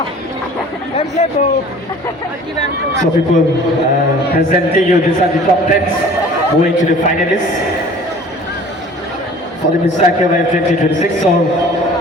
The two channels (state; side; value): normal; both; correlation 0.47